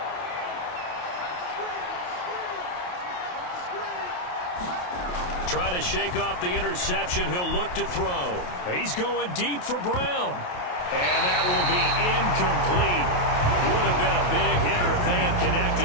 Trying to shake off the interception. He'll look to throw. He's going deep for Brown. And that will be incomplete. Would have been a big hitter if they had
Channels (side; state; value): right; late; 28 ms